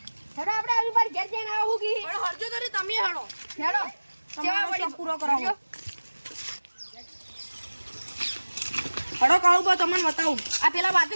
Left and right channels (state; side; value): inverted; both; correlation -1.00